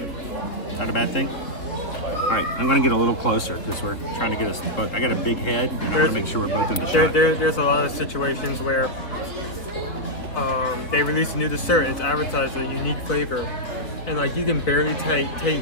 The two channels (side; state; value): right; late; 3.6 ms